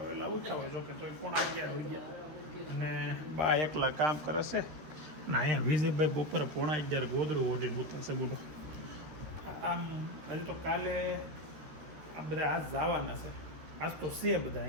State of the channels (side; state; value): left; late; 13 ms